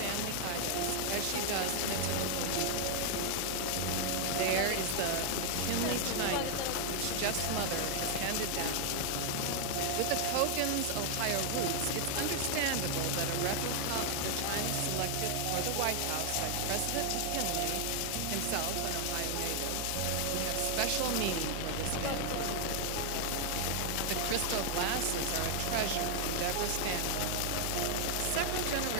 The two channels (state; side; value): different; both; correlation 0.00